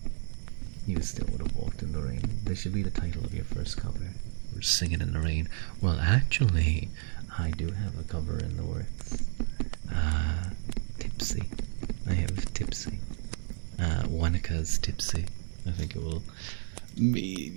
You still would have walked in the rain. This should be the title of your first cover. We're singing in the rain. Well, actually, I do have a cover in the works. Tipsy. I have Tipsy. Wanaka's Tipsy. I think it will.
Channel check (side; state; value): left; silent; digital silence